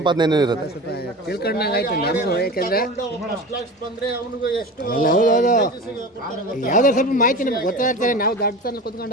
ಇರುತ್ತೆ. ತಿಳ್ಕೊಂಡಂಗಾಯ್ತು ನಮಗೂ. ಯಾಕೆಂದರೆ ಯಾವುದೋ ಸ್ವಲ್ಪ ಮಾಹಿತಿ ನಮ್ಗೆ ಗೊತ್ತಾಗ್ತಾರೆ. ನಾವು ದಾಟ್ತಾನೆ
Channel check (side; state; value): both; normal; correlation 0.32